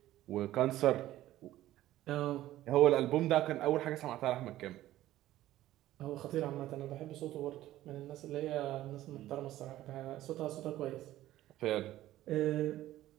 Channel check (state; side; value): quieter; left; 14.5 dB